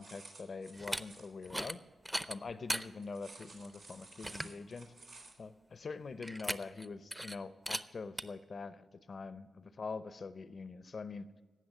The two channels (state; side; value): normal; both; correlation 0.95